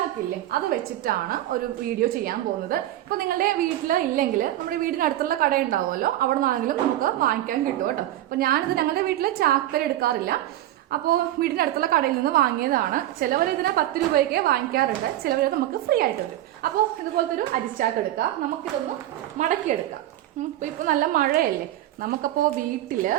അത് വെച്ചിട്ടാണ് ഒരു വീഡിയോ ചെയ്യാൻ പോകുന്നത്. ഇപ്പൊ നിങ്ങളുടെ വീട്ടിൽ ഇല്ലെങ്കിൽ നമ്മുടെ വീടിനടുത്തുള്ള കട ഉണ്ടാവുമല്ലോ, അവിടെ നിന്നാണെങ്കിലും നമുക്ക് വാങ്ങിക്കാൻ കിട്ടും കേട്ടോ. അപ്പൊ ഞാനിത് ഞങ്ങളുടെ വീട്ടില് ചാക്കര എടുക്കാറില്ല, അപ്പോൾ വീടിന്റെ അടുത്തുള്ള കടയിൽ നിന്ന് വാങ്ങിയതാണ്. ചിലവർ ഇതിന് 10 രൂപയ്ക്ക് വാങ്ങിക്കാറുണ്ട്, ചിലവർ നമുക്ക് ഫ്രീ ആയിട്ടുണ്ട്. അപ്പോൾ ഇതുപോലത്തെ ഒരു അരിച്ചാക്ക് എടുക്കാം, നമുക്കിതൊന്ന് മടക്കിയെടുക്കാം. ഇപ്പൊ നല്ല മഴയല്ലേ, നമുക്കപ്പോ വീട്ടില്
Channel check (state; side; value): quieter; left; 14.0 dB